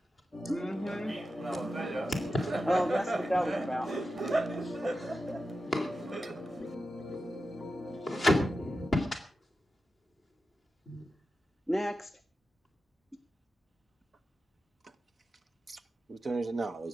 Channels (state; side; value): normal; both; correlation 0.91